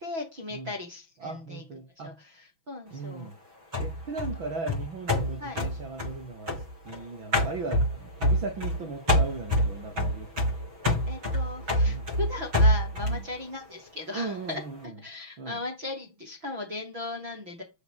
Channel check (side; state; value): left; late; 6.1 ms